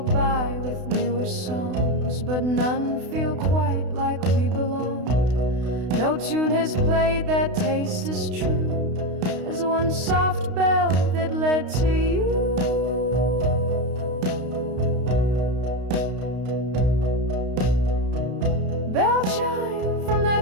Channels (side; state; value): left; late; 32 ms